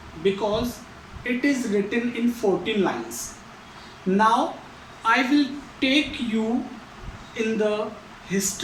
because it is written in 14 lines. Now, I will take you in the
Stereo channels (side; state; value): both; identical; correlation 1.00